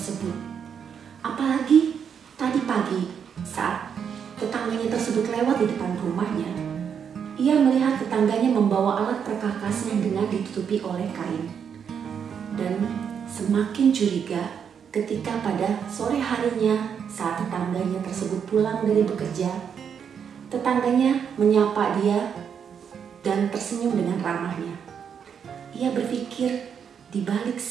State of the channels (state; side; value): quieter; left; 7.4 dB